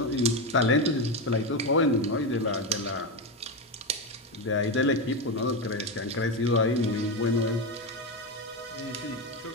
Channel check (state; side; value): normal; both; correlation 0.13